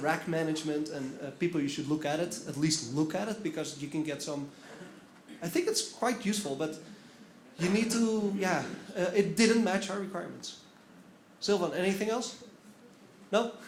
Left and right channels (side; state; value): both; identical; correlation 1.00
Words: management, and people, you should look at it, at least look at it, because you can get some, I think it's quite useful, but you need to, it didn't match our requirements. Sylvan, anything else? No?